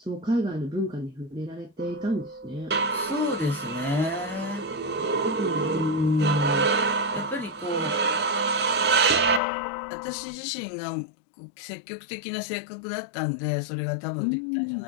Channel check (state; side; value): drops out; right; at 9.4 s